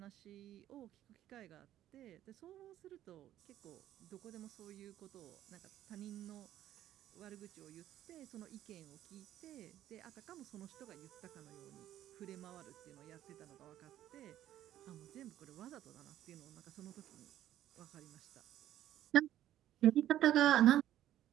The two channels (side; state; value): left; quieter; 12.5 dB